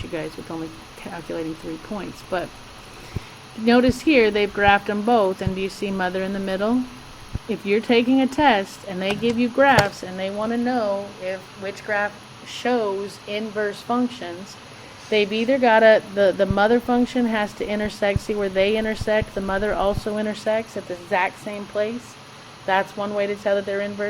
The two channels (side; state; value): both; identical; correlation 1.00